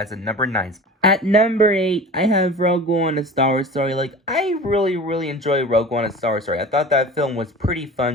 a number 9. At number 8, I have Rogue One, A Star Wars Story. Like, I really enjoy Rogue One, A Star Wars Story. I thought that film was pretty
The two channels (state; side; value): normal; both; correlation 0.37